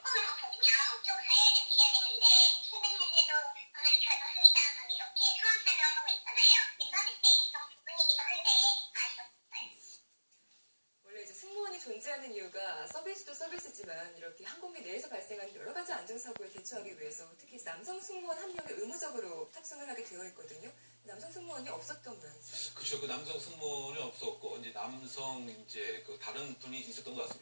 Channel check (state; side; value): inverted; both; correlation -1.00